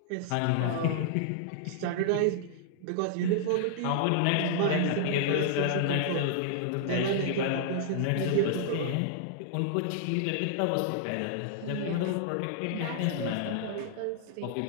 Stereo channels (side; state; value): both; different; correlation -0.01